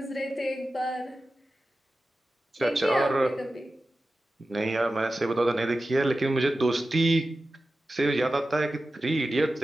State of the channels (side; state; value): both; normal; correlation 0.94